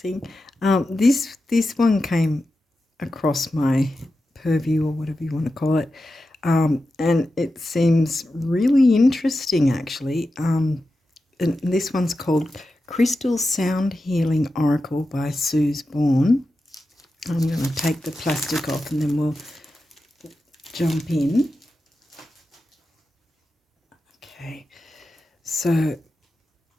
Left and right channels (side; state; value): both; normal; correlation 0.91